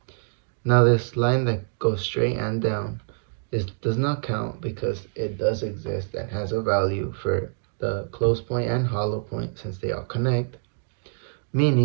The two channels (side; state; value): left; silent; digital silence